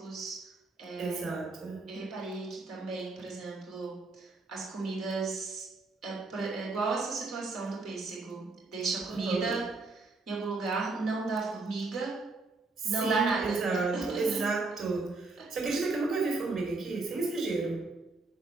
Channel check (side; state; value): left; quieter; 3.6 dB